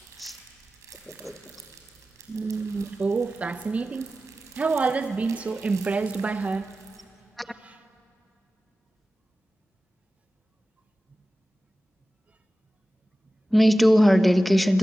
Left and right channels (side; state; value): both; normal; correlation 0.95